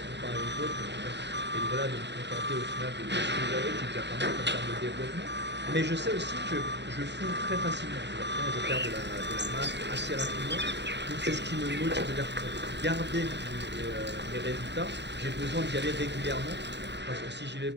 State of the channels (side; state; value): left; late; 0.51 ms